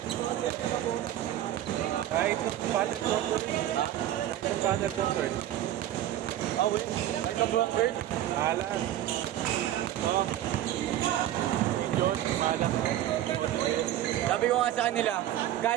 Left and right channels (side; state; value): left; quieter; 12.7 dB